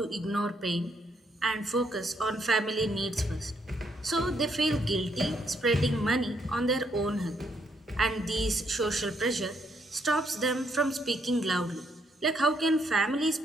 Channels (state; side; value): normal; both; correlation 0.73